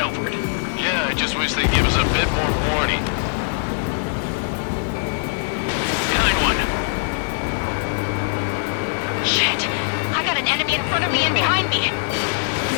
over it. Yeah, I just wish they'd give us a bit more warning. Behind one. Shit! I got an enemy in front of me and behind me!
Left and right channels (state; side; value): silent; right; digital silence